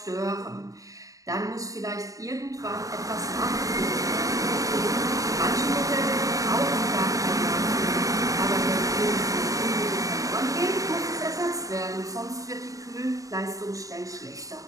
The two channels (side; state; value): left; late; 0.16 ms